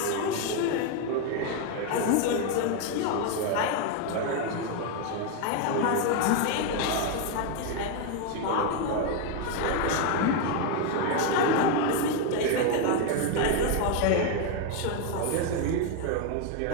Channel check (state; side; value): different; both; correlation 0.01